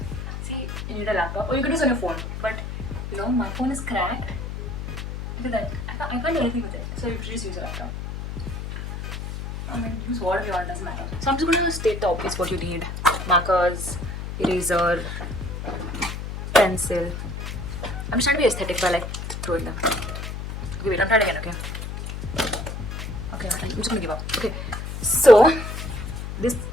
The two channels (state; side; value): noise; left; hum, 6 dB below the sound